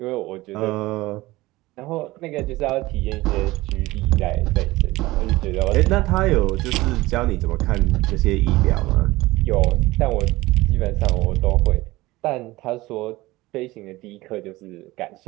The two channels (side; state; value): left; quieter; 19.3 dB